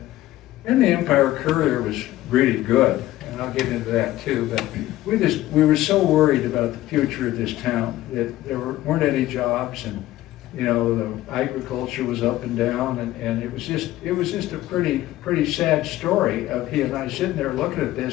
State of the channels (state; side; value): quieter; right; 15.4 dB